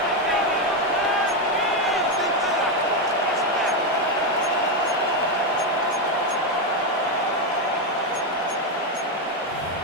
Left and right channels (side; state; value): both; normal; correlation 0.07